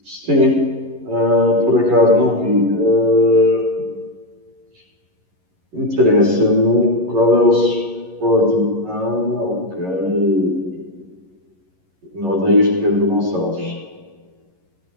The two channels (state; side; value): late; left; 11 ms